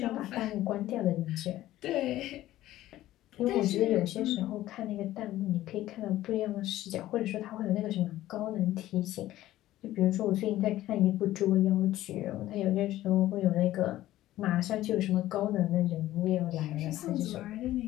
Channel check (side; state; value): right; quieter; 14.8 dB